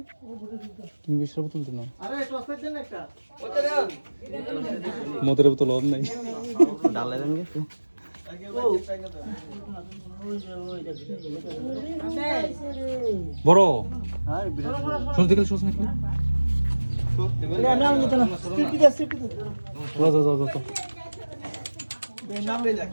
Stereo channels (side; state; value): both; inverted; correlation -1.00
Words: কিংফিশার বোতল দিন, মদের বোতল অন নাই। বড় সস দেখলে সস নাকি?